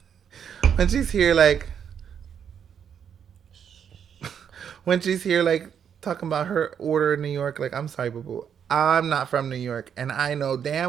when she's here, like, talking about her order in New York, like, I'm sorry, boo-boo. I'm not from New York. And I know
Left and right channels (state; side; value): quieter; left; 8.1 dB